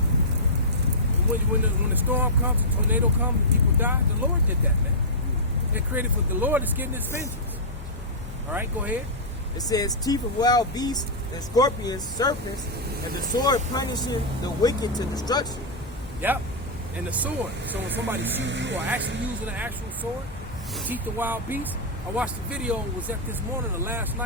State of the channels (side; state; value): both; normal; correlation -0.11